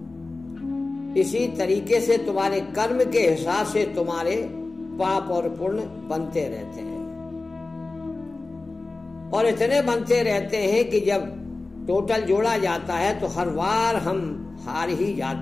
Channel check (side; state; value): right; quieter; 3.3 dB